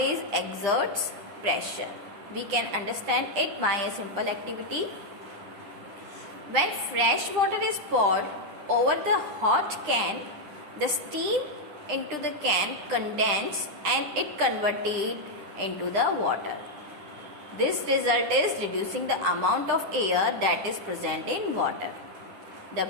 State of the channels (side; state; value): left; late; 10 ms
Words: exerts pressure. We can understand it by a simple activity. When fresh water is poured over the hot can, the steam into the can condenses and it converted into the water. This result is reducing the amount of air that is present in water. The